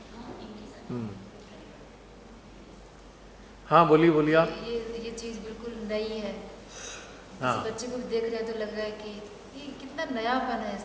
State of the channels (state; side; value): identical; both; correlation 1.00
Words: हाँ बोलिए बोलिए आप। ये चीज़ बिल्कुल नई है। हाँ। किसी बच्चे को भी देख रहे हैं तो लग रहा है कि ये कितना नयापन है